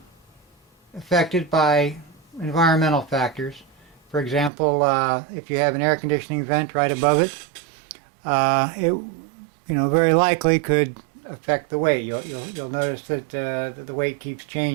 affected by environmental factors. For example, if you have an air conditioning vent right above it, it very likely could affect the weight. You'll notice that the weight keeps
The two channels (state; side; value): drops out; left; at 4.5 s